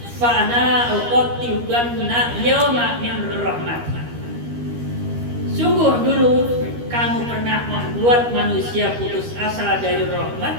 fa ana uqattibanna yawma min rahmatin. Sungguh dulu kamu pernah membuat manusia putus asa dari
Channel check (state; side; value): late; left; 13 ms